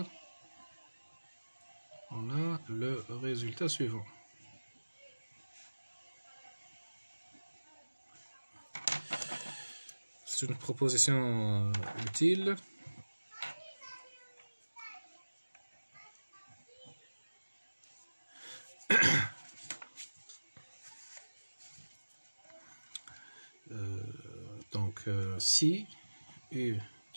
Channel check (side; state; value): both; inverted; correlation -1.00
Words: on a le résultat suivant. C'est une proposition utile. Donc, si U